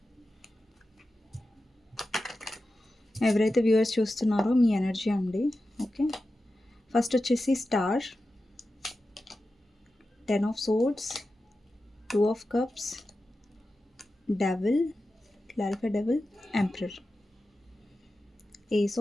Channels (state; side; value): normal; both; correlation 0.92